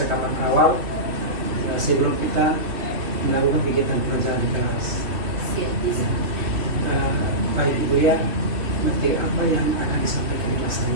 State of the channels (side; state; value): left; late; 2.9 ms